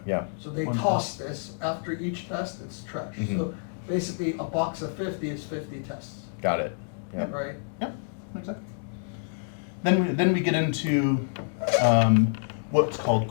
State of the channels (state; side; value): silent; right; digital silence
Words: yeah. So they One toss this, after each test, it's trash. Mhm. So basically, a box of 50 is 50 tests, Got it. Yeah. right? Yeah, exactly. Then we get into what's called